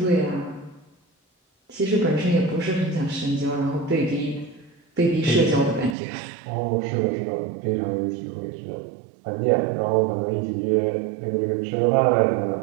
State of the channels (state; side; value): drops out; left; at 6.0 s